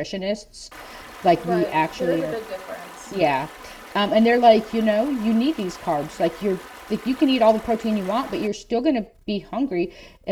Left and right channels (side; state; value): both; identical; correlation 1.00